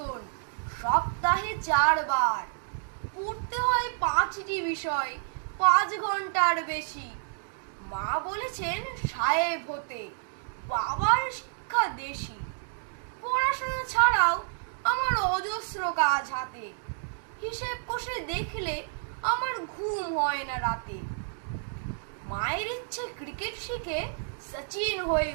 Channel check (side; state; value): left; silent; digital silence